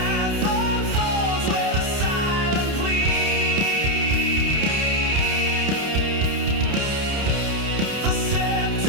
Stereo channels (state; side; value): late; left; 30 ms